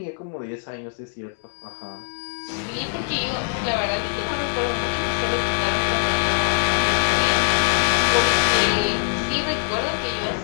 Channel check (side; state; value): right; silent; digital silence